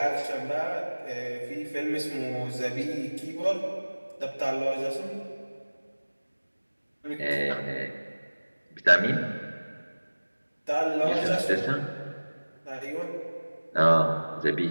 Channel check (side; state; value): both; inverted; correlation -1.00